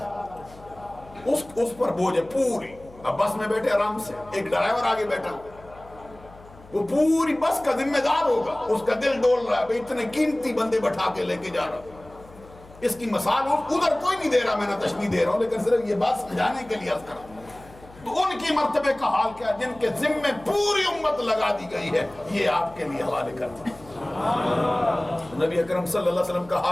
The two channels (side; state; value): left; noise; hum, 22 dB below the sound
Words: اس پر بوجھ ہے پوری۔ اب بس میں بیٹھے آرام سے، ایک ڈرائیور آگے بیٹھا ہوا، وہ پوری بس کا ذمہ دار ہوگا، اس کا دل ڈول رہا ہے بھئی اتنے قیمتی بندے بٹھا کے لے کے جا رہا ہوں۔ اس کی مثال ادھر کوئی نہیں دے رہا، میں نہ تشبیہ دے رہا ہوں، لیکن صرف یہ بات سمجھانے کے لیے عرض کر رہا ہوں۔ تو ان کی مرتبے کا حال کیا، جن کے ذمے پوری امت لگا دی گئی ہے، یہ آپ کے لیے حوالے کرتا ہوں۔ نبی اکرم صلی اللہ علیہ وسلم کا